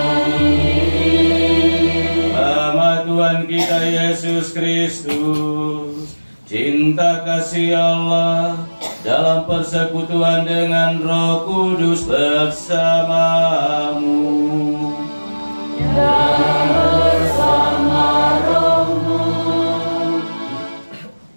Nama Tuhan kita Yesus Kristus, cinta kasih Allah dalam persekutuan dengan Roh Kudus bersamamu dan bersama rohmu.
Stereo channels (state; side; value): inverted; both; correlation -1.00